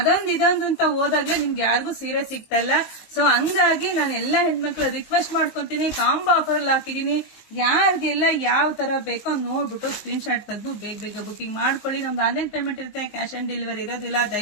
ಇದೊಂದು ಅಂತ ಹೋದಾಗ್ಲೇ ನಿಮ್ಗೆ ಯಾರಿಗೂ ಸೀರೆ ಸಿಗ್ತಾ ಇಲ್ಲ. ಸೊ ಹಂಗಾಗಿ ನಾನು ಎಲ್ಲಾ ಹೆಣ್ಮಕ್ಳು ರಿಕ್ವೆಸ್ಟ್ ಮಾಡ್ಕೊಂತೀನಿ, ಕಾಂಬೋ ಆಫರ್ ಅಲ್ಲಿ ಹಾಕಿದೀನಿ. ಯಾರಿಗೆಲ್ಲ ಯಾವ ತರ ಬೇಕೋ ನೋಡ್ಬಿಟ್ಟು ಸ್ಕ್ರೀನ್ ಶಾಟ್ ತೆಗೆದು ಬೇಗ ಬುಕಿಂಗ್ ಮಾಡ್ಕೊಳ್ಳಿ. ನಮ್ದು ಆನ್ಲೈನ್ ಪೇಮೆಂಟ್ ಇರುತ್ತೆ, ಕ್ಯಾಶ್ ಆನ್ ಡೆಲಿವರಿ ಇರೋದಿಲ್ಲ.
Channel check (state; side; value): late; right; 19 ms